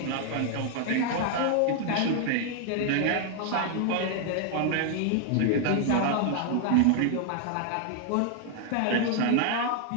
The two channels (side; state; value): both; different; correlation 0.00